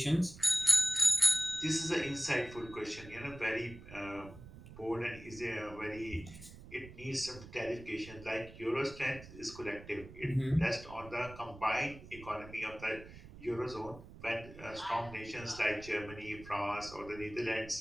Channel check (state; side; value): noise; right; rumble, 16 dB below the sound